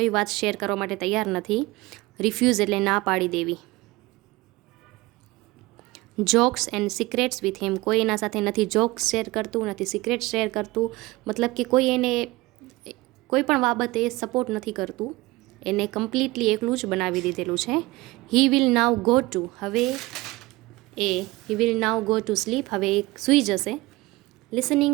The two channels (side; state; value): left; quieter; 21.0 dB